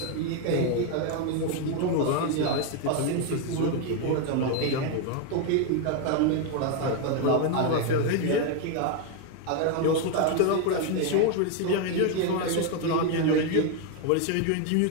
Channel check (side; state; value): both; different; correlation 0.01